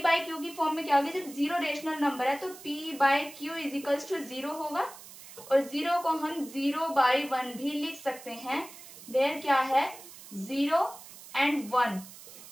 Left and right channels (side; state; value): right; noise; hiss, 17 dB below the sound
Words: की फॉर्म में क्या होगा? जब 0 रेशनल नंबर है तो P/Q इज इक्वल्स टू 0 होगा, और 0 को हम 0/1 भी लिख सकते हैं। वेयर क्या है? 0 एंड 1,